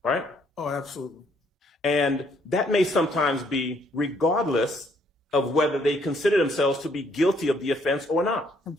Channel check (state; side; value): normal; both; correlation 0.68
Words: right? Oh, absolutely. And that may sometimes be regardless of whether they consider themselves to be guilty of the offense or not.